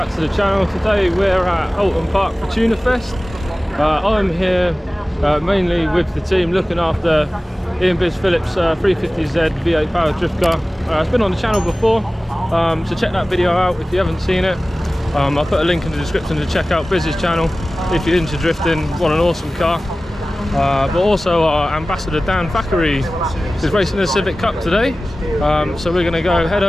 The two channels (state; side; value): normal; both; correlation 0.97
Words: to the channel. Today we're at Oulton Park for Tuna Fest. I'm here mainly with the team looking after Ian Biz Phillips 350Z V8 powered drift car. It's been on the channel before, so check that video out if you haven't seen it. I'll put a link in the description to check out Biz's channel if you're into drifting, want an awesome car. But also our ambassador Dan Thackeray is racing the Civic Cup today, so we're going to go head